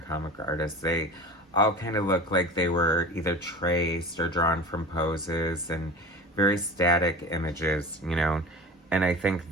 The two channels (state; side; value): normal; both; correlation 0.33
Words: artists. They all kind of look like they were either traced or drawn from poses and very static images, And I think